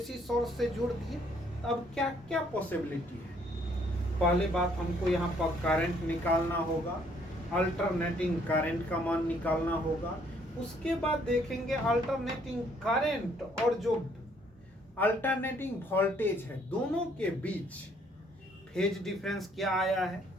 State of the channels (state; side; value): normal; both; correlation 0.65